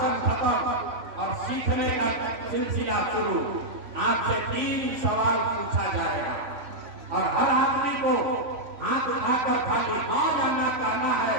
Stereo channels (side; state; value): left; late; 3.5 ms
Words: खत्म और सीखने का सिलसिला शुरू। आपसे 3 सवाल पूछा जाएगा और हर आदमी को हाथ उठाकर खाली हाँ या ना कहना है।